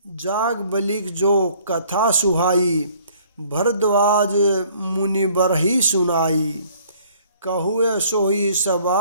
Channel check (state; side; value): inverted; both; correlation -0.58